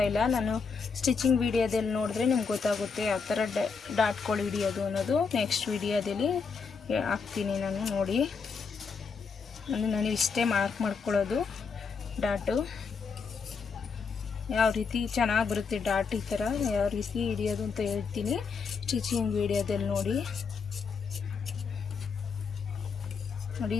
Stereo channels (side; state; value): right; quieter; 5.4 dB